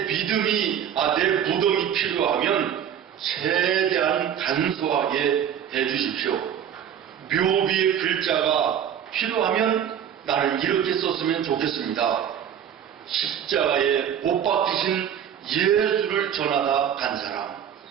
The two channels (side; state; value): left; quieter; 9.2 dB